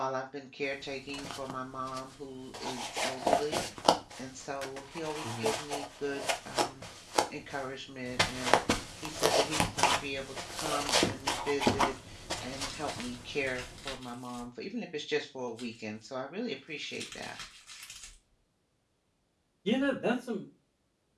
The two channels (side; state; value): both; identical; correlation 1.00